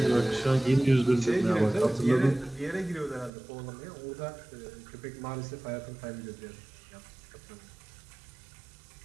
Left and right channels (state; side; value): drops out; left; at 3.3 s